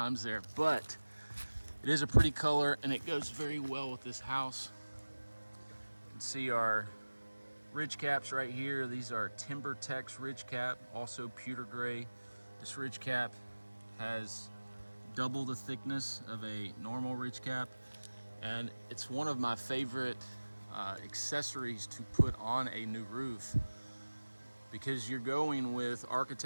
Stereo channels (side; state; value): both; inverted; correlation -1.00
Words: there, but it is a pretty color and it goes very well with this house. You can see our ridge caps right here. These are Timber Tex ridge cap, also pewter gray. This ridge cap has double the thickness of a normal ridge cap, and it's one of my favorite accessories to put on a new roof, because you're going with